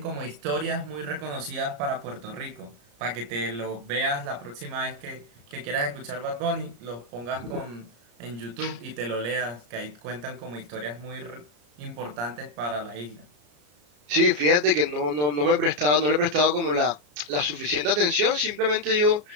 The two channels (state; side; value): late; left; 34 ms